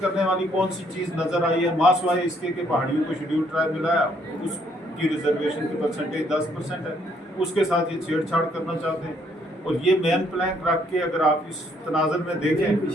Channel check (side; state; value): both; normal; correlation 0.68